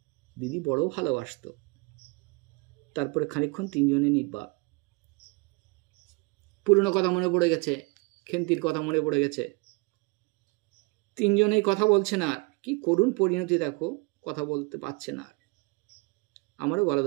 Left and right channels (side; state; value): left; quieter; 28.1 dB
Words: দিদি বড় ভালোবাসতো। তারপরে খানিকক্ষণ তিনজনে নির্বাক। পুরনো কথা মনে পড়ে গেছে, খেন্তির কথা মনে পড়ে গেছে। তিনজনেই কথা বলছে না। আর কি করুণ পরিণতি দেখো, কথা বলতে পারছে না আর। আমারও গলা